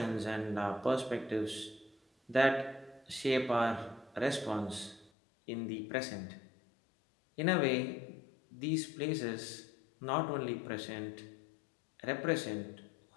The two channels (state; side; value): drops out; right; at 5.1 s